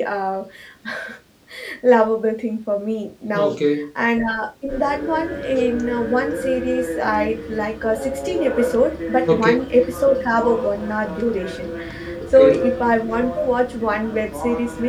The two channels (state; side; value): identical; both; correlation 1.00